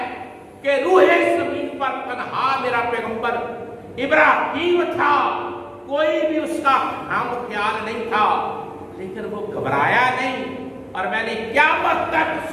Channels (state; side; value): identical; both; correlation 1.00